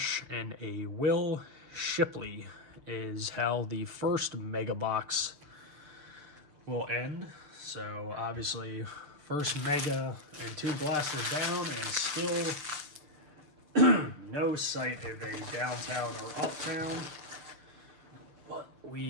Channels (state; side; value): late; left; 6.7 ms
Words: and a Will Shipley is how the first mega box will end. So obviously, first mega and 2 blasters down, and still no sight of a downtown or uptown. But